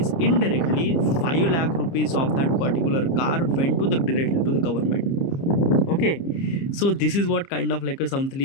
indirectly 5 lakh rupees of that particular car went to the directly to the government. Okay, so this is what kind of like a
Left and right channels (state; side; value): late; right; 30 ms